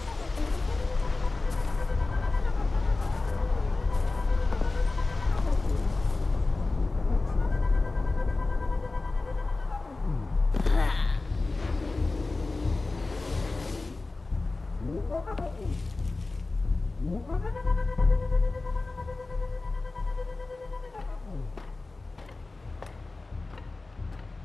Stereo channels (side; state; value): right; quieter; 3.4 dB